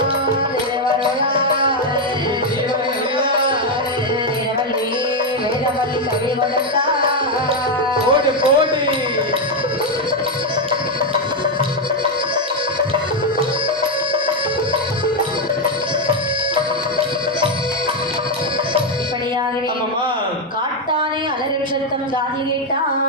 கொடுத்தார் போடு போடு இப்படியாகவே ஆமாமா காட்டானே அலறும் சத்தம் காதில் கேட்டான்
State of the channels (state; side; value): normal; both; correlation 0.04